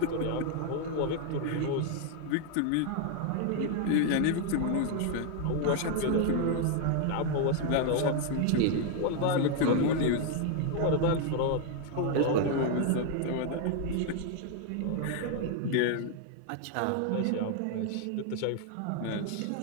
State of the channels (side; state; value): both; different; correlation 0.00